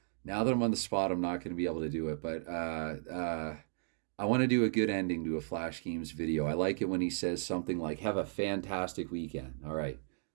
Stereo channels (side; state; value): left; silent; digital silence